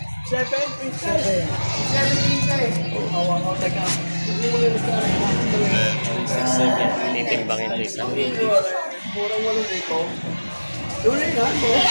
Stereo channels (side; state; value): both; inverted; correlation -1.00